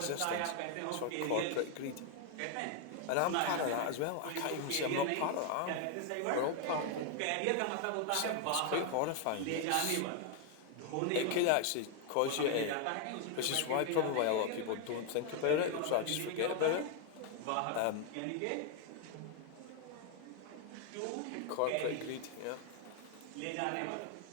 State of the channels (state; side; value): different; both; correlation 0.01